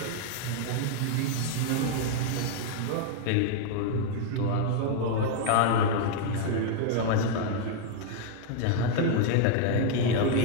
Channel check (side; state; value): both; different; correlation 0.00